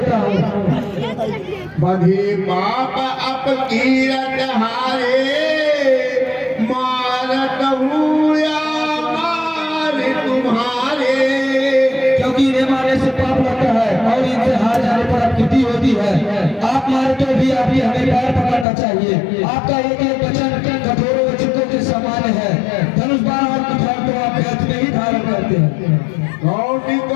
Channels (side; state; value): right; drops out; at 18.7 s